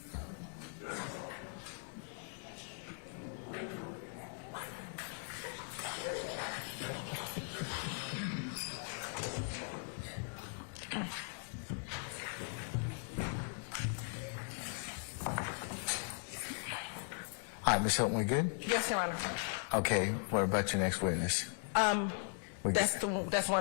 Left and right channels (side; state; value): right; silent; 52 dB below the other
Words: All right, Ms. Hilton, we good? Yes, Your Honor. Okay, what about your next witness? That's